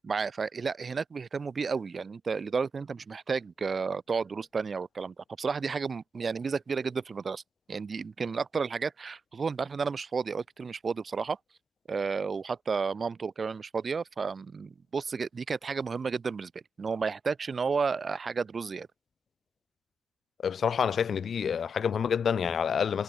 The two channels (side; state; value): both; normal; correlation 0.84